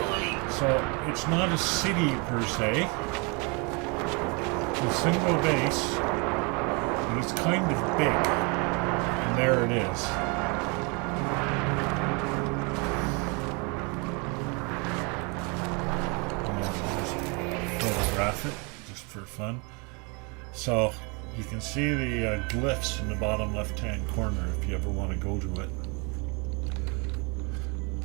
So, it's not a city per se. It's a single base, but it's kind of big. And there it is. And I'll just throw photograph it just for fun. So you can see the glyphs in the bottom left-hand corner if you ever want to go to it.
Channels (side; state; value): left; quieter; 31.6 dB